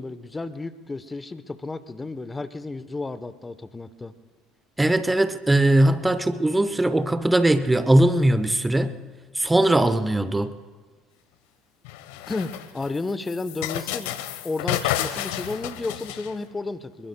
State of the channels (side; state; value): both; normal; correlation 0.89